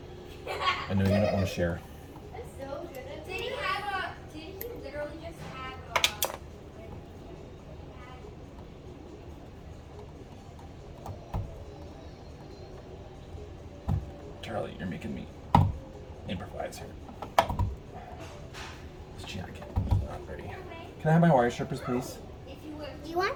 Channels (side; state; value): both; identical; correlation 1.00